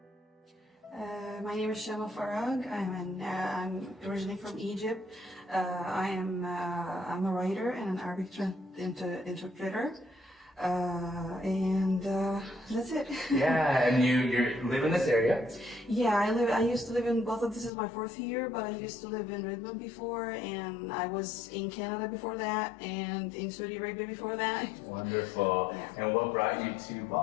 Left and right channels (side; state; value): right; drops out; at 17.7 s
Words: My name is Shama Farag. I'm originally from Egypt. I'm a writer and an Arabic interpreter, and that's it. Yeah, and you live in this area? Yeah, I used to live in Bothell. This is my fourth year, but I used to live in Redmond before, and I was in Canada before that, and in Saudi Arabia before that. Wonderful. Yeah. And what brought you to